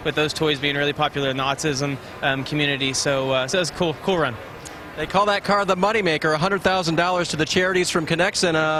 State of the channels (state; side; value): identical; both; correlation 1.00